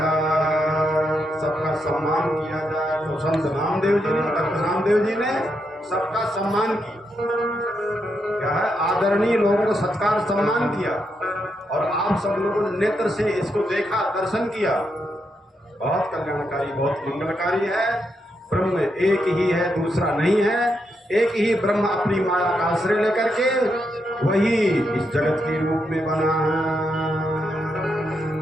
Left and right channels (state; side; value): normal; both; correlation 0.81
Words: सबका सम्मान किया जाए। तो संत नामदेव जी ने, भक्त नामदेव जी ने सबका सम्मान किया, क्या है? आदरणीय लोगों को सत्कार सम्मान किया, और आप सब लोगों ने नेत्र से इसको देखा, दर्शन किया। बहुत कल्याणकारी, बहुत मंगलकारी है। ब्रह्म एक ही है, दूसरा नहीं है। एक ही ब्रह्म अपनी माया का आश्रय लेकर के वही इस जगत के रूप में बना है,